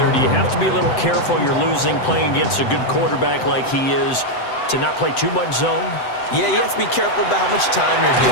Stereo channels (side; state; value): right; late; 7.9 ms